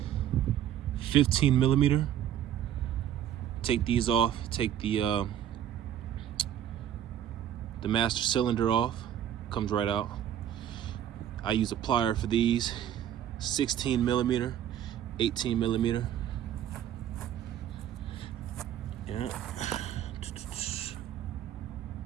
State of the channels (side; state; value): left; quieter; 10.6 dB